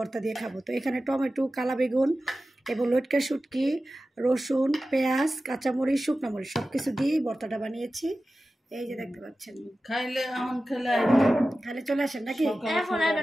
দিয়ে খাবো। তো এখানে টমেটো, কালা বেগুন এবং লটকা শুটকি, রসুন, পেঁয়াজ, কাঁচামরিচ, শুকনো মরিচ সব কিছু দিয়ে ভর্তাটা বানিয়েছি। এই যে দেখতে পাচ্ছেন, খাইলে চলে আসেন নাকি?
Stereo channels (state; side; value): normal; both; correlation 0.94